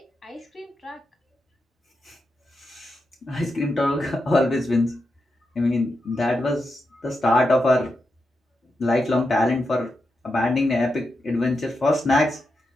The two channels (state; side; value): normal; both; correlation 0.87